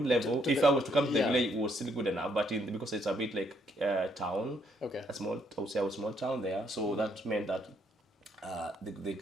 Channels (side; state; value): both; normal; correlation 0.71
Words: level. If I was to come to the village, it was still good enough. But because it's a bit like town, okay, I would say a small town there. So that meant that